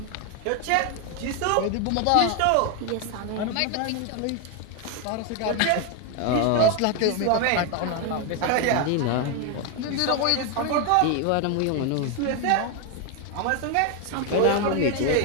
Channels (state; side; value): different; both; correlation 0.01